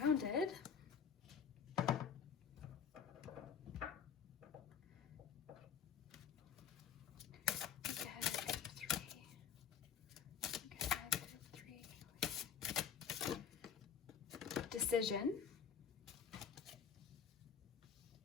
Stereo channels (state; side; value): quieter; right; 7.2 dB